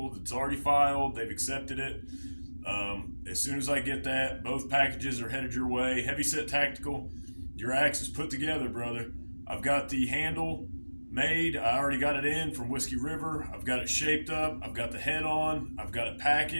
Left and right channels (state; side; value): inverted; both; correlation -1.00